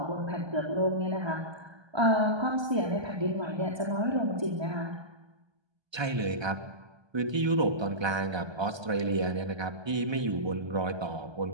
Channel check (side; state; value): left; late; 1.3 ms